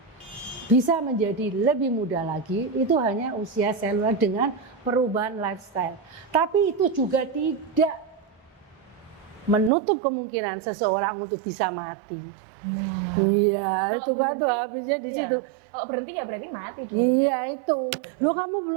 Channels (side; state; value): left; drops out; at 9.7 s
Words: Bisa menjadi lebih muda lagi, itu hanya usia seluler dengan perubahan lifestyle. Tapi itu juga tidak menutup kemungkinan seseorang untuk bisa mati. Nah, iya, kalau itu berhenti, batu habisnya di situ. Kalau berhenti ya berarti mati dong. Iya itu. Loh kamu